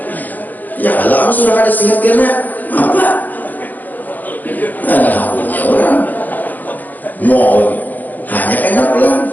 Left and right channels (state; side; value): late; right; 0.083 ms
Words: Ya kalau sudah ada sihat karena apa? Ada punya orang. Mau hanya kena pulang.